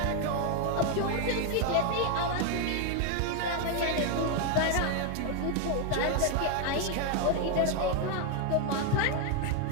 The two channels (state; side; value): different; both; correlation 0.01